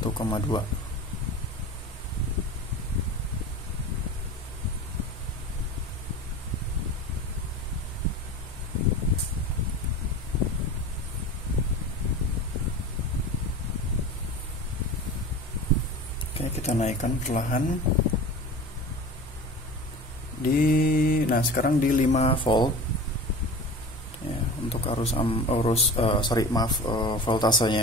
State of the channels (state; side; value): normal; both; correlation 0.35